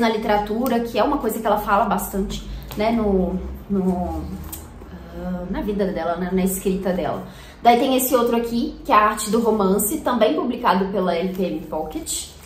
literatura, que é uma coisa que ela fala bastante, né, na vida dela, né, na escrita dela. Daí tem esse outro aqui, que é a Arte do Romance, também publicado pela LPM Pocket.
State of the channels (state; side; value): identical; both; correlation 1.00